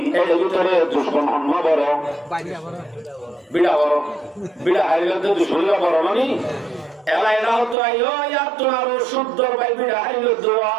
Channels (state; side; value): drops out; left; at 7.8 s